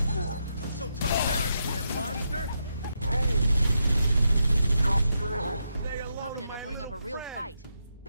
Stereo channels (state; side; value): inverted; both; correlation -0.82